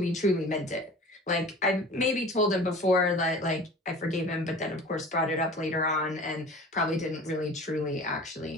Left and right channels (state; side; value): normal; both; correlation 0.41